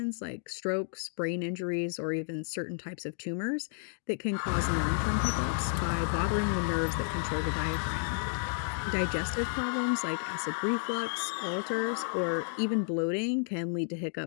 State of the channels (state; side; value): silent; right; digital silence